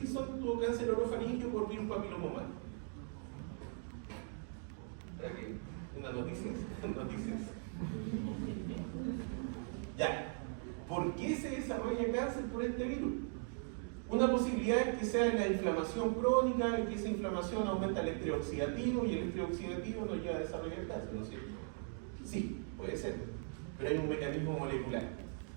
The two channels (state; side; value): silent; left; 51 dB below the other